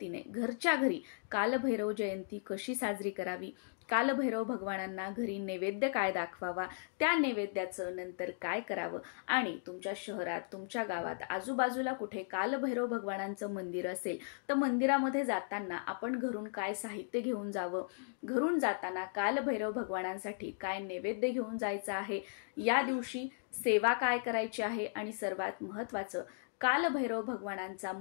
घरच्या घरी कालभैरव जयंती कशी साजरी करावी, कालभैरव भगवानांना घरी नैवेद्य काय दाखवावा, त्या नैवेद्याचं नंतर काय करावं आणि तुमच्या शहरात, तुमच्या गावात आजूबाजूला कुठे कालभैरव भगवानांचं मंदिर असेल तर मंदिरामध्ये जाताना आपण घरून काय साहित्य घेऊन जावं, घरून जाताना कालभैरव भगवानांसाठी काय नैवेद्य घेऊन जायचं आहे, या दिवशी सेवा काय करायची आहे आणि सर्वात महत्त्वाचं कालभैरव भगवानांचा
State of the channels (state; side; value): silent; right; digital silence